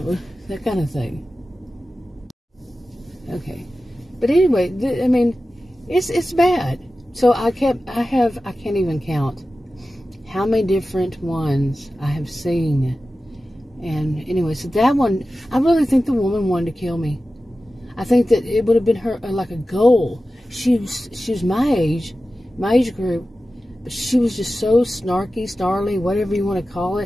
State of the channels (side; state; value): both; normal; correlation 0.94